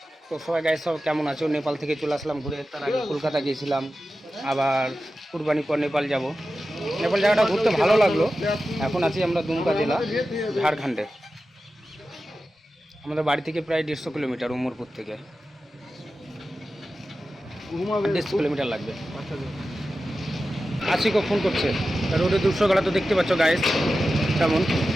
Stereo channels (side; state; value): both; normal; correlation 0.93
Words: তো সবাই গাইস সব কেমন আছো? নেপাল থেকে চলে আসলাম ঘুরে, তার আগে কলকাতা গিয়েছিলাম, আবার কুরবানি পর নেপাল যাব। নেপাল জায়গাটা ঘুরতে ভালো লাগলো। এখন আছি আমরা দুমকা জেলা, ঝাড়খণ্ডে। আমাদের বাড়ি থেকে প্রায় 150 কিলোমিটার, উমরপুর থেকে 150 কিলোমিটার লাগবে। আশিকও ফোন করছে, রোডে 200 গলা তো দেখতে পাচ্ছ গাইস কেমন।